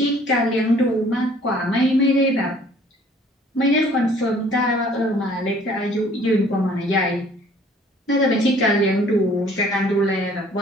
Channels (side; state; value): both; normal; correlation 0.56